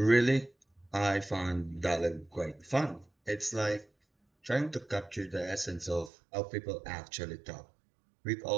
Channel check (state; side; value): drops out; left; at 6.1 s